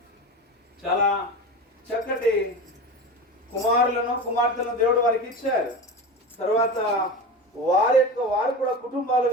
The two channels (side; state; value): both; normal; correlation 0.27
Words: చాలా చక్కటి కుమారులను కుమార్తెలను దేవుడు వారికి ఇచ్చారు. తర్వాత వారు కూడా